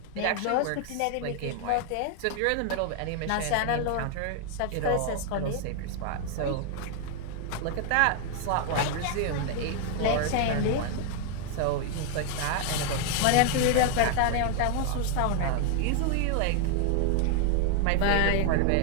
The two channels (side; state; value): both; different; correlation 0.00